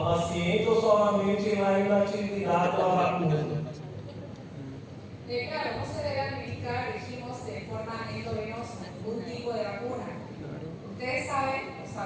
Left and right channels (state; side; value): identical; both; correlation 1.00